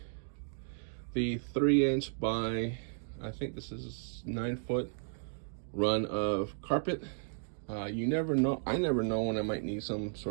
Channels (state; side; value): silent; left; digital silence